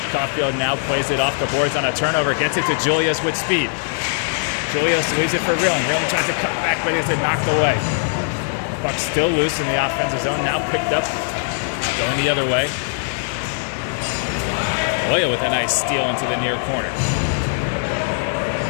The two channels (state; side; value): silent; right; 65 dB below the other